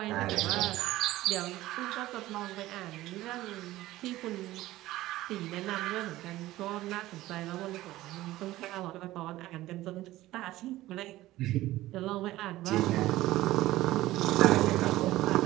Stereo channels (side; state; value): left; quieter; 16.4 dB